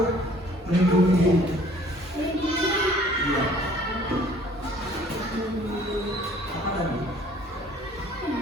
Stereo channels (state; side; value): normal; both; correlation 0.55